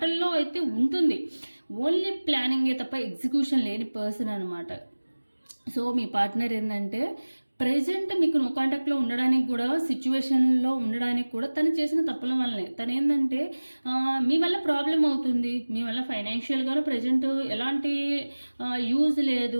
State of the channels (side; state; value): both; inverted; correlation -1.00